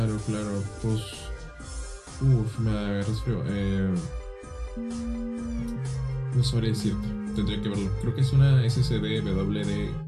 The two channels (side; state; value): both; identical; correlation 1.00